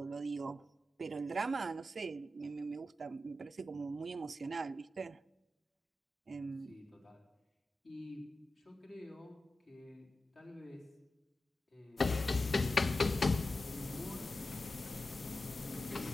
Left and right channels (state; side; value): normal; both; correlation 0.92